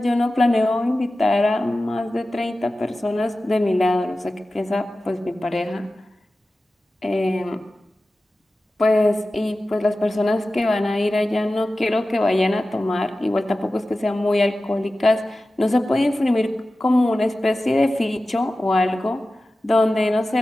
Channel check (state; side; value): normal; both; correlation 0.95